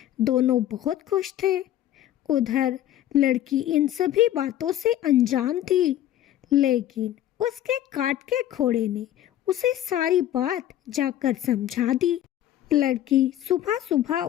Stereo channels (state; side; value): quieter; right; 12.4 dB